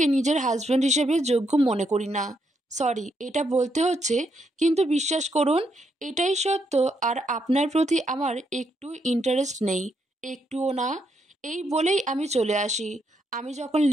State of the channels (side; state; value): both; normal; correlation 0.78